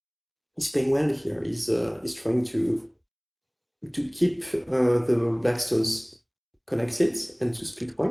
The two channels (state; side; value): identical; both; correlation 1.00